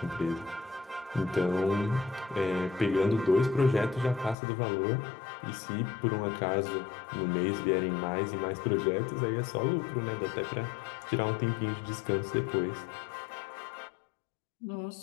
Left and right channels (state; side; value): drops out; right; at 4.4 s